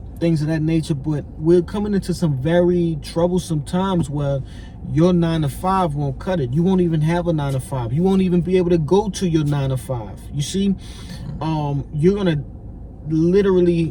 things of that nature, but we're coming into some very troublesome times where your 9 to 5 won't cut it. You won't even have a 9 to 5. You won't even be able to go to your 9 to 5. You see, you're gonna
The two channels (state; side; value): identical; both; correlation 1.00